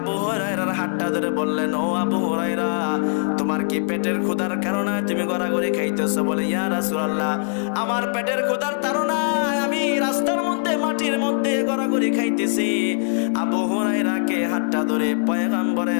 হুরায়রার হাতটা ধরে বললেন, ও আবু হুরায়রা, তোমার কি পেটের ক্ষুধার কারণে তুমি গড়াগড়ি খাইতেছো? বলে, ইয়া রাসূলুল্লাহ, আমার পেটের ক্ষুধার তাড়নায় আমি রাস্তার মধ্যে মাটির মধ্যে গড়াগড়ি খাইতেছি। আবু হুরায়রাকে হাতটা ধরে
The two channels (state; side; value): silent; right; digital silence